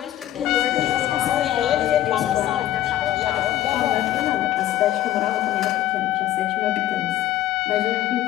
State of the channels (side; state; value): right; quieter; 13.2 dB